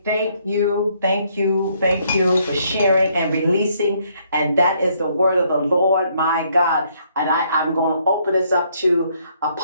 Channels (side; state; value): both; inverted; correlation -0.69